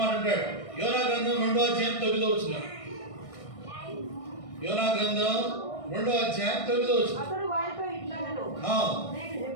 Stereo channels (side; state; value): right; late; 1.6 ms